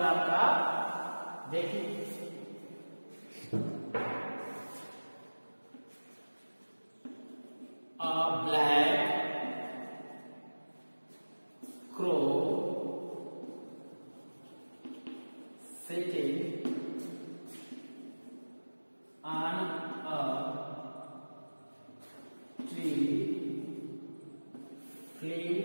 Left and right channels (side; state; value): both; inverted; correlation -1.00